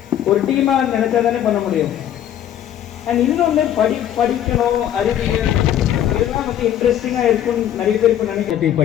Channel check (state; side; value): quieter; right; 10.9 dB